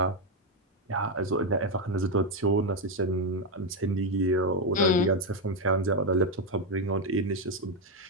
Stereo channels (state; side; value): normal; both; correlation 0.05